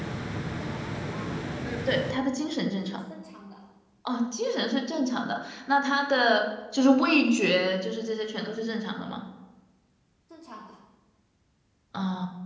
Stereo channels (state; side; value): identical; both; correlation 1.00